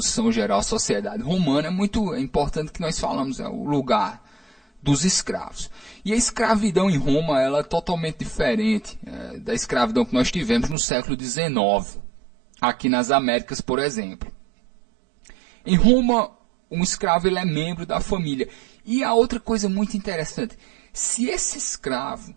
geral à sociedade romana, é muito importante que nós falamos o lugar dos escravos. E a escravidão em Roma ela é totalmente diferente da escravidão que nós tivemos no século XIX, aqui nas Américas, por exemplo. Em Roma, um escravo ele é membro da família. E a outra coisa muito interessante, se esse escravo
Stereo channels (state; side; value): drops out; left; at 10.8 s